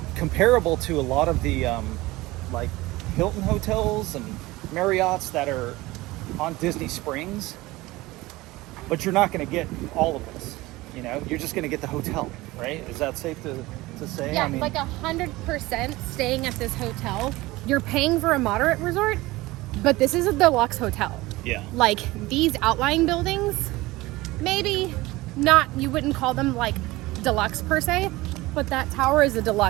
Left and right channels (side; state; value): left; quieter; 19.8 dB